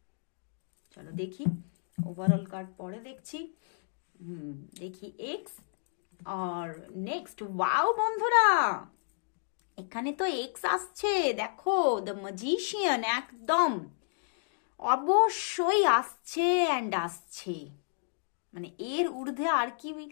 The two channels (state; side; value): silent; right; digital silence